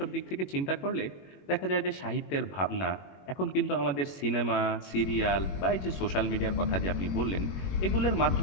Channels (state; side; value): late; right; 21 ms